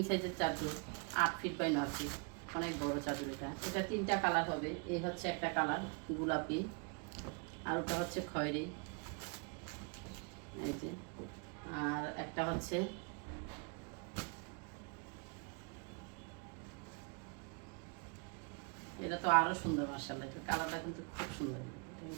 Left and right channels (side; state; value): left; quieter; 35.9 dB